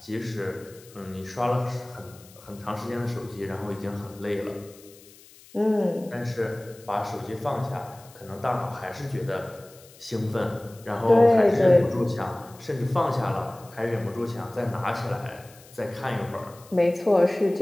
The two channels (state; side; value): noise; left; hiss, 23 dB below the sound